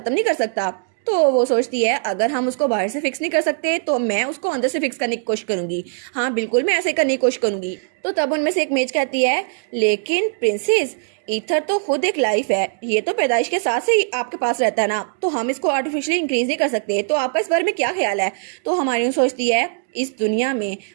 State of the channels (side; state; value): left; silent; digital silence